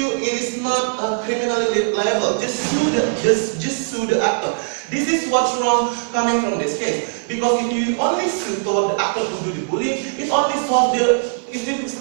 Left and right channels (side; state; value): left; silent; 56 dB below the other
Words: it is not criminally liable. Just sue the actor. This is what's wrong coming from this case. Because if you only sue toward the actor who do the bullying, it only solve the if